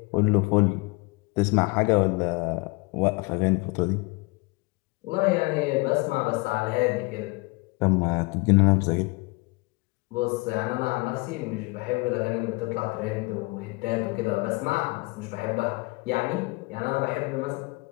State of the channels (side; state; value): right; quieter; 26.4 dB